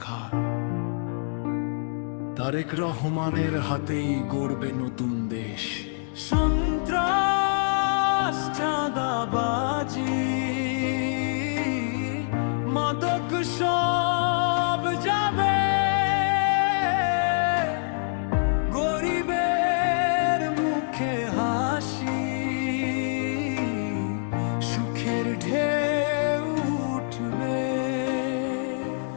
তারেক রহমানের হাতেই গড়বে নতুন দেশ। সন্ত্রাস, চাঁদাবাজি, মাদক সব যাবে, গরিবের মুখে হাসি, সুখের ঢেউ উঠবে।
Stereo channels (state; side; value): silent; right; digital silence